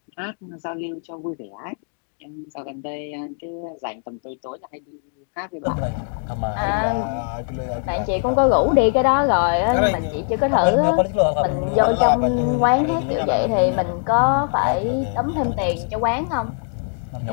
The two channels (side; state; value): right; silent; 59 dB below the other